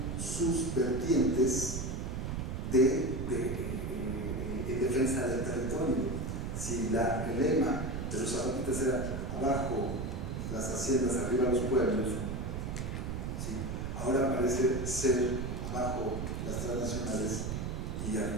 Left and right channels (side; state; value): right; noise; rumble, 3 dB below the sound